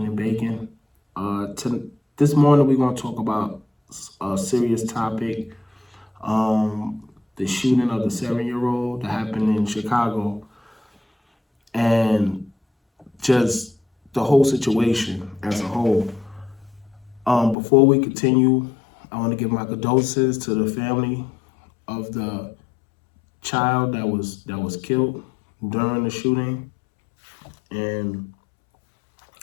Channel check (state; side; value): drops out; right; at 17.6 s